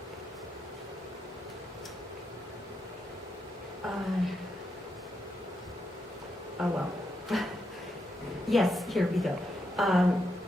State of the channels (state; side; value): normal; both; correlation 0.82